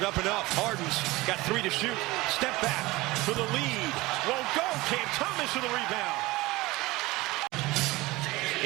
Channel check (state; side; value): quieter; left; 20.4 dB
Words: up enough. Harden's got 3 to shoot. Step back for the lead. Won't go. Cam Thomas for the rebound.